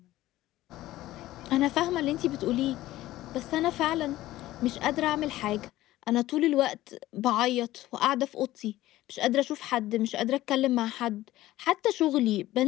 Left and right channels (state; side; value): quieter; right; 15.9 dB